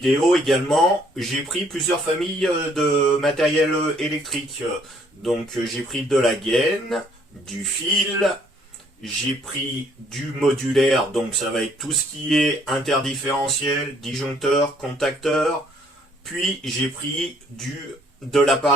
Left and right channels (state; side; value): normal; both; correlation 0.64